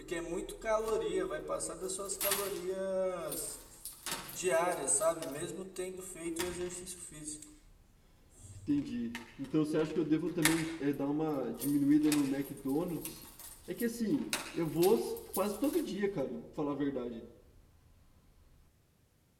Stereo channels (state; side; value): identical; both; correlation 1.00